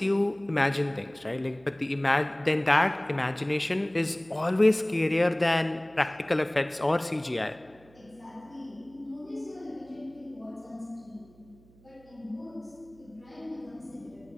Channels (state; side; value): noise; right; hum, 27 dB below the sound